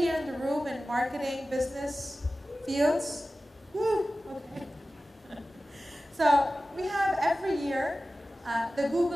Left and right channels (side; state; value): both; normal; correlation 0.95